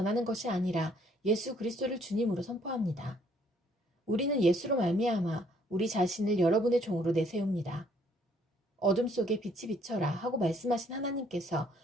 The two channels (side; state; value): both; normal; correlation 0.65